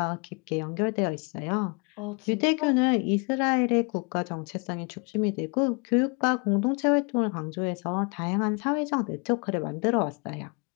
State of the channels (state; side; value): quieter; right; 33.0 dB